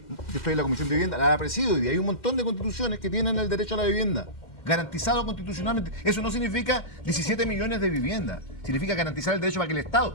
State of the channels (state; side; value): late; right; 2.1 ms